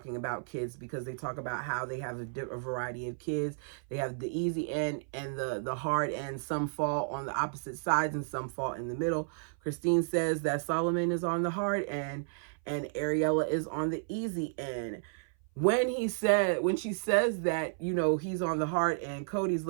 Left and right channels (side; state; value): left; silent; 56 dB below the other